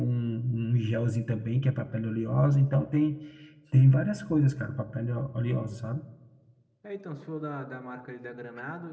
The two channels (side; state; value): both; identical; correlation 1.00